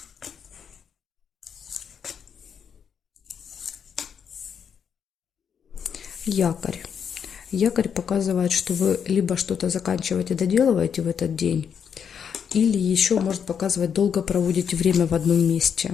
Якорь. Якорь показывает, что вы либо что-то заканчиваете, доделываете в этот день, или еще может показывать, долго проводите время в одном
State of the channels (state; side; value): quieter; right; 7.4 dB